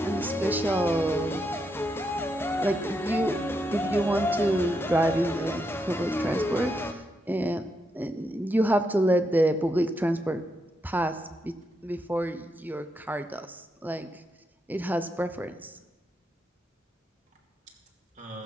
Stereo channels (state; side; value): normal; both; correlation 0.82